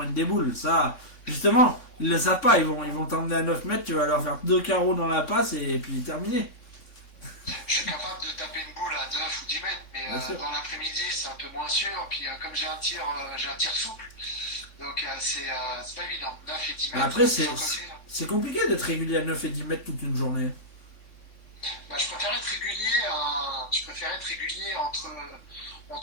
des boules. Ça, justement, ils le savent pas. Ils vont t'emmener à 9 mètres, tu vas leur faire 2 carreaux dans la passe et puis terminé. Je suis capable de taper une boule à 9 ou 10 mètres, mais Bien sûr. dans l'après-midi, c'est un peu moins sûr. Puis comme j'ai un tir souple, donc c'est pas évident. 9 et 10 mètres. Après, sans côté, là. c'est compliqué d'être régulier à 9 et 10 mètres toute une journée. Bah, je préfère être régulier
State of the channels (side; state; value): right; late; 3.5 ms